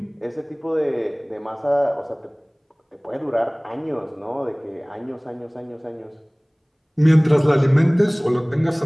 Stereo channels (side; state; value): both; identical; correlation 1.00